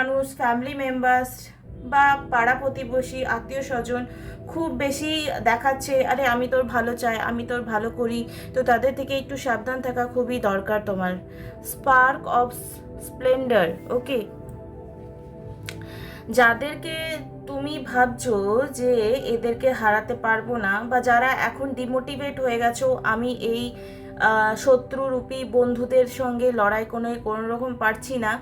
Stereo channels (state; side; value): identical; both; correlation 1.00